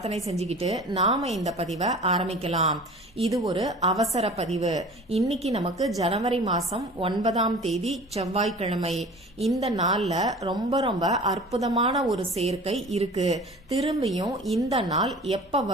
செஞ்சுக்கிட்டு நாம இந்த பதிவை ஆரம்பிக்கலாம். இது ஒரு அவசர பதிவு. இன்னைக்கு நமக்கு ஜனவரி மாசம் 9ஆம் தேதி செவ்வாய்க்கிழமை. இந்த நாள்ல ரொம்ப ரொம்ப அற்புதமான ஒரு சேர்க்கை இருக்கு. திரும்பியும் இந்த நாள் எப்ப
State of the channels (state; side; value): normal; both; correlation 0.41